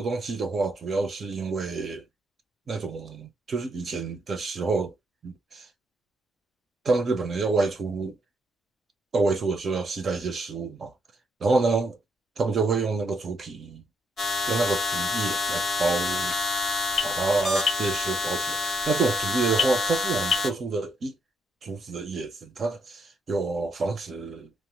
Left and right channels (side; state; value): both; normal; correlation 0.75